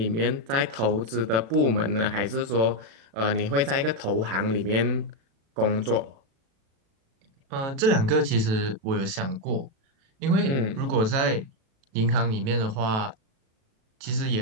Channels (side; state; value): left; late; 36 ms